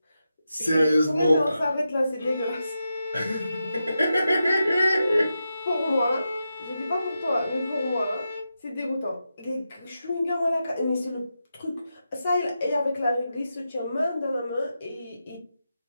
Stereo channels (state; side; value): inverted; both; correlation -0.88